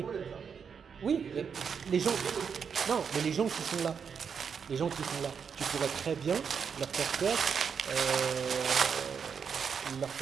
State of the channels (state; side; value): quieter; left; 6.6 dB